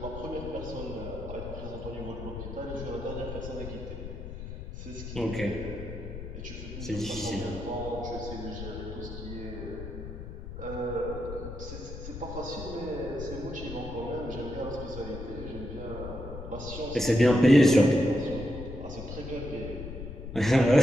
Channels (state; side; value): noise; left; rumble, 9 dB below the sound